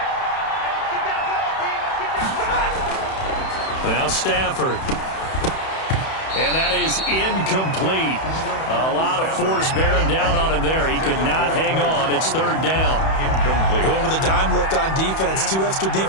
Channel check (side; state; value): right; late; 31 ms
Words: Now Stafford. And that is incomplete. A lot of force bearing down on him there. He could not hang on. It's third down. Incomplete. Going with a dime look on defense. 2 extra